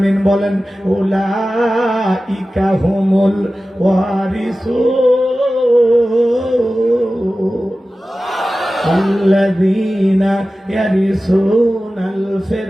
বলেন, উলাইকা হুমুল ওয়ারিসুন। আল্লাযীনা ইয়ারিসুনাল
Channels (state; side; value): normal; both; correlation 0.95